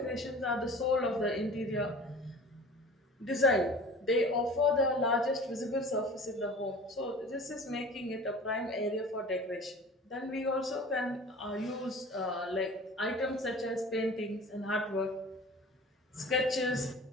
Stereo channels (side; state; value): both; normal; correlation 0.42